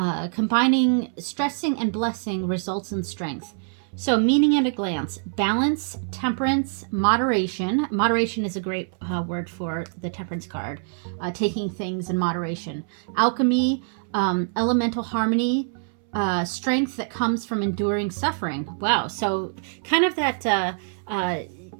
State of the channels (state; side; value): silent; left; 62 dB below the other